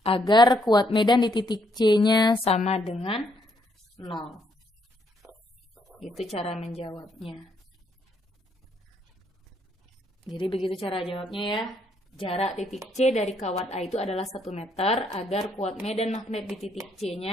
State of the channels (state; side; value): normal; both; correlation 0.72